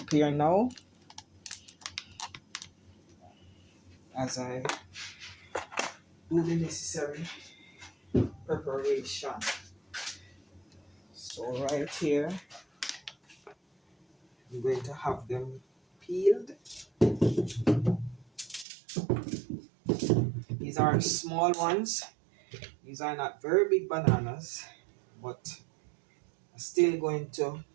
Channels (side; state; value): left; drops out; at 18.7 s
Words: now as I do the necessary preparation. So right here, I'm going to have them peeled. These are small ones. These are not very big bananas, but I'm still going to